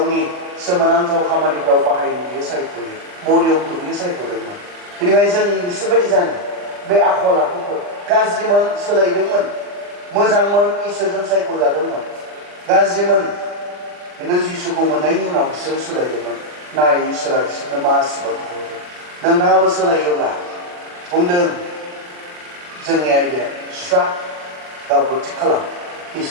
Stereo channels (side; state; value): left; late; 40 ms